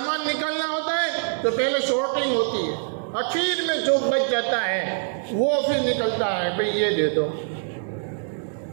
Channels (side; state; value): left; silent; digital silence